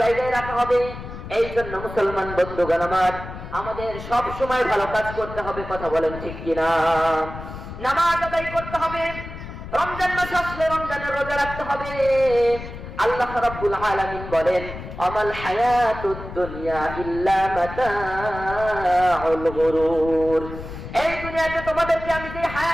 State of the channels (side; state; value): left; noise; rumble, 11 dB below the sound